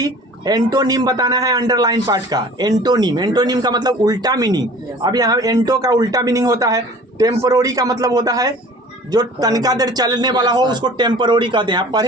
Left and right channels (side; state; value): both; normal; correlation 0.45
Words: एंटोनिम बताना है अंडरलाइन पार्ट का। एंटोनिम का मतलब उल्टा मीनिंग। अब यहाँ एंटो का उल्टा मीनिंग होता है टेम्पोररी का मतलब होता है जो तनका देर चलने वाला हो उसको टेम्पोररी कहते हैं। आप